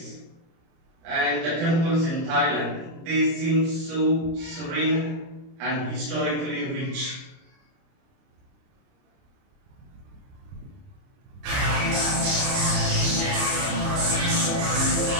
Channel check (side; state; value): left; late; 30 ms